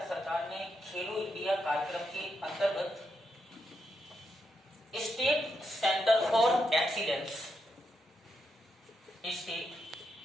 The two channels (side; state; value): both; normal; correlation 0.83